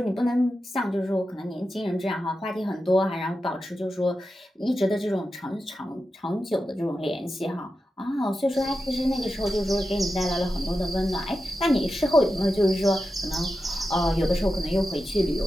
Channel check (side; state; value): both; normal; correlation 0.91